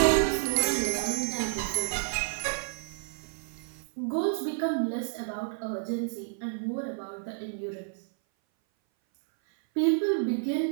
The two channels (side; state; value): left; silent; 57 dB below the other